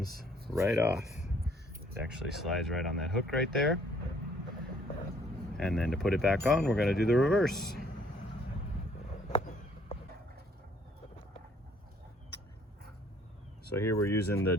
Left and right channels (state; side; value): normal; both; correlation 0.63